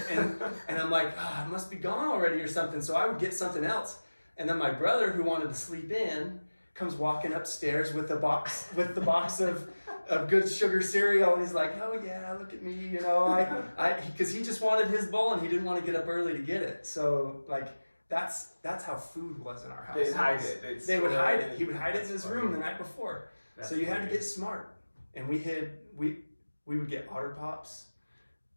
and I'm like, it must be gone already or something. So I would get something else. And then my brother, who wanted to sleep in, comes walking upstairs with the box of good sugar cereal, and he's like, oh yeah, look at me, because he just wanted his bowl and he didn't want to get up early to get it. So like, that's how food was in our house. They'd hide it. They would hide it. He would hide it in his room the night before. So you had to get smart. And we would get Otter Pops.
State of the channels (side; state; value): both; inverted; correlation -1.00